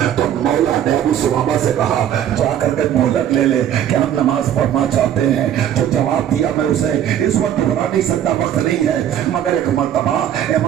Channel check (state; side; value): quieter; left; 10.4 dB